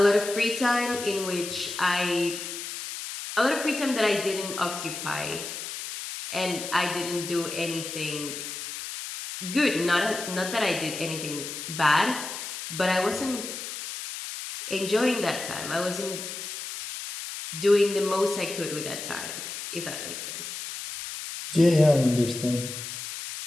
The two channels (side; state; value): left; noise; hiss, 7 dB below the sound